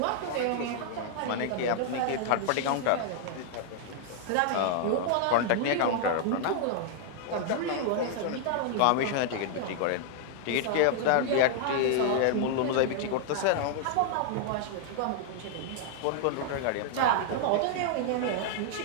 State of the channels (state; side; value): different; both; correlation -0.01